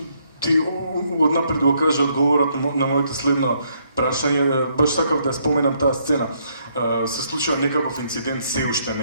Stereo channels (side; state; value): both; inverted; correlation -0.72